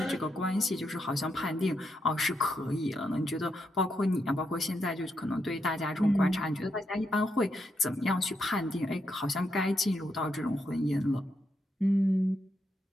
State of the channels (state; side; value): normal; both; correlation 0.81